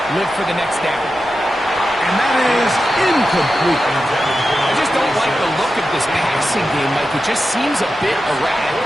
live for the next down. And that is incomplete. I just don't like the look of this passing game, Mike. It just seems a bit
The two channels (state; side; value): normal; both; correlation 0.91